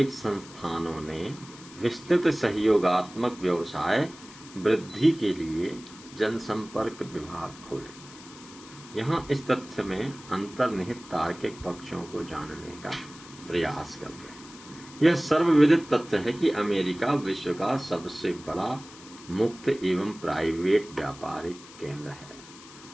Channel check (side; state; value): left; noise; hiss, 19 dB below the sound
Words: संस्थानों ने विस्तृत सहयोगात्मक व्यवसाय वृद्धि के लिए जनसंपर्क विभाग खोले। यहाँ इस तथ्य में अंतर्निहित तार्किक पक्षों को जानने का प्रयास करते हैं। यह सर्वविदित तथ्य है कि अमेरिका विश्व का सबसे बड़ा मुक्त एवं प्राइवेट व्यापारिक केंद्र है।